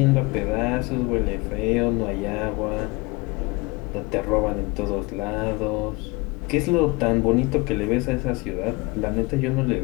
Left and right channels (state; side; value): quieter; right; 25.3 dB